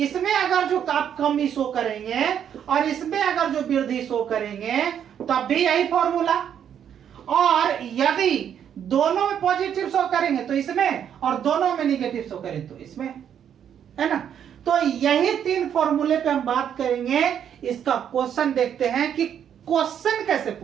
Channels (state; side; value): quieter; left; 9.0 dB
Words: अगर जो आप कमी शो करेंगे और इसमें अगर जो वृद्धि शो करेंगे तब भी यही फॉर्मूला, और यदि दोनों में पॉजिटिव शो करेंगे तो इसमें, और दोनों में निगेटिव शो करें तो इसमें, है ना। तो यही 3 फॉर्मूले पे हम बात करेंगे। इसका क्वेश्चन देखते हैं कि क्वेश्चन कैसे